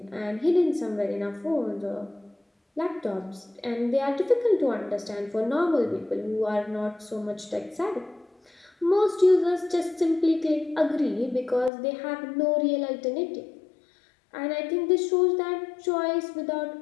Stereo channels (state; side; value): drops out; right; at 11.7 s